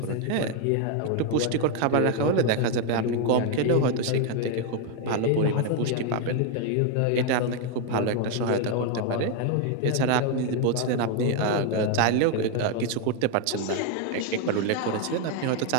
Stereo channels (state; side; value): different; both; correlation 0.01